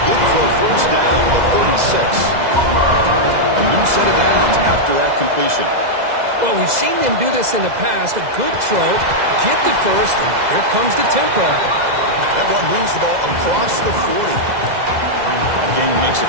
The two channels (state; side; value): late; left; 2.0 ms